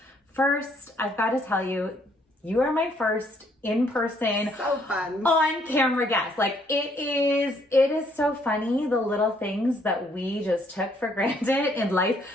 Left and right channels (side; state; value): both; normal; correlation 0.67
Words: first, I've got to tell you, you are my first in-person, so fun, on-camera guest. Like it is so funny, the little things that we just took for granted in